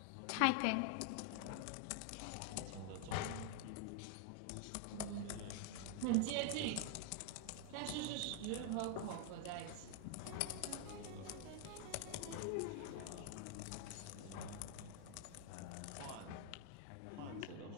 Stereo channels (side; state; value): both; different; correlation 0.00